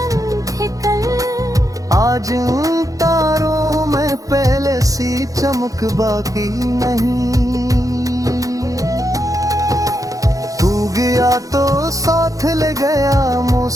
थे कल, आज उन तारों में पहले सी चमक बाकी नहीं। तू गया तो साथ ले गया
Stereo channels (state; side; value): late; left; 0.17 ms